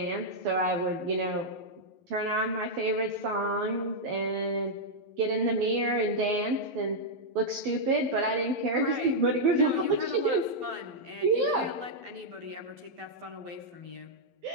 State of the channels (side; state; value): left; late; 11 ms